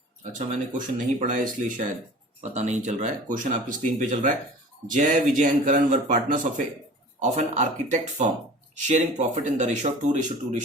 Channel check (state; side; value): normal; both; correlation 0.42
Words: अच्छा, मैंने क्वेश्चन नहीं पढ़ा है इसलिए शायद पता नहीं चल रहा है। क्वेश्चन आपकी स्क्रीन पे चल रहा है। Jay, Vijay and Karan were partners of an architect firm sharing profit in the ratio of